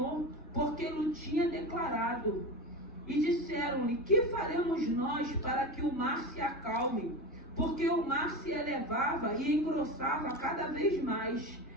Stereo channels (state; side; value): normal; both; correlation 0.24